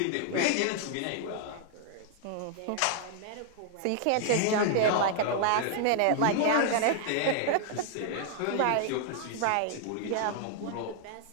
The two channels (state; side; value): different; both; correlation 0.00